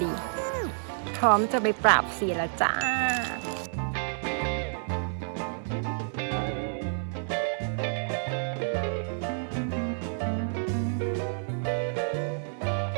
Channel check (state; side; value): silent; left; digital silence